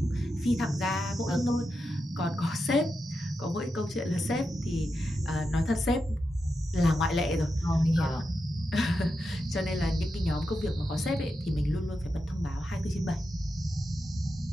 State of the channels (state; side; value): normal; both; correlation 0.88